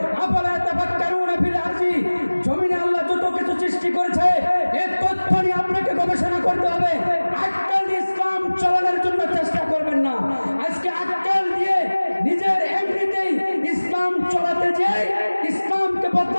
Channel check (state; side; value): inverted; both; correlation -1.00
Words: আফালা তাফাক্কারুনা ফিল আরজি, জমিনে আল্লাহ যত কিছু সৃষ্টি করেছে, এই তথ্য নিয়ে আপনাকে গবেষণা করতে হবে। আক্কাল দিয়ে ইসলাম চালানোর জন্য চেষ্টা করবেন না। আজকে আক্কাল দিয়ে নিজের এমনিতেই ইসলাম চালাতে যেয়ে ইসলামকে